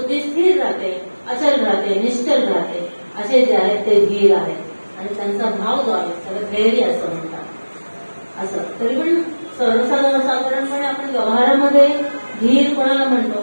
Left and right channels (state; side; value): inverted; both; correlation -1.00